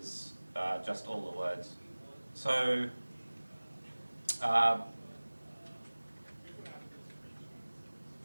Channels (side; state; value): both; inverted; correlation -1.00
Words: just all the words. So